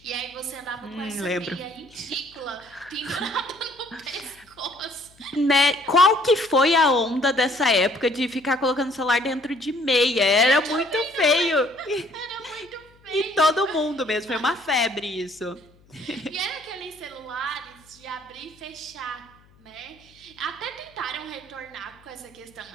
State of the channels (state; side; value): noise; left; hum, 29 dB below the sound